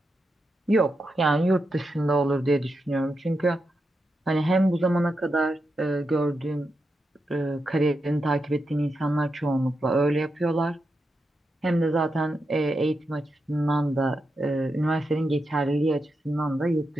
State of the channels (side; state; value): both; normal; correlation 0.86